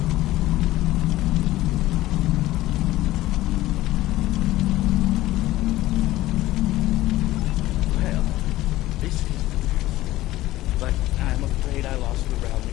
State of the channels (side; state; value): right; quieter; 16.2 dB